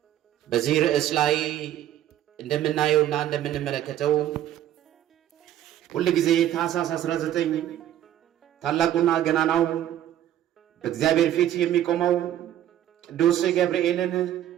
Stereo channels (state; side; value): quieter; left; 11.9 dB